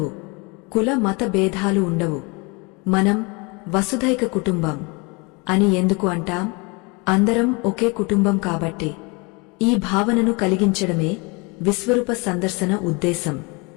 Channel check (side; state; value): right; quieter; 28.9 dB